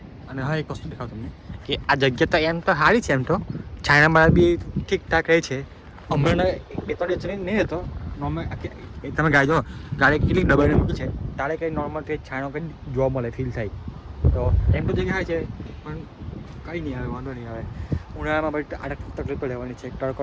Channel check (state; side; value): identical; both; correlation 1.00